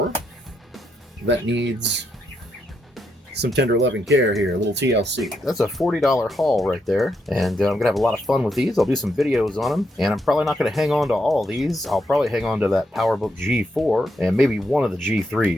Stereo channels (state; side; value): normal; both; correlation 0.80